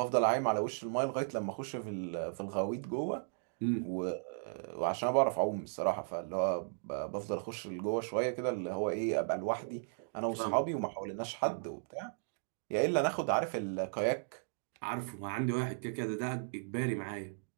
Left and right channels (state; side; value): silent; left; digital silence